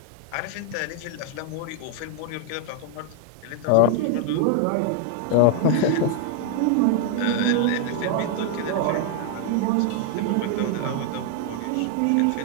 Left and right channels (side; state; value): both; different; correlation 0.00